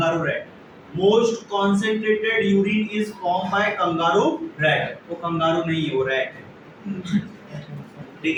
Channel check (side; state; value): both; identical; correlation 1.00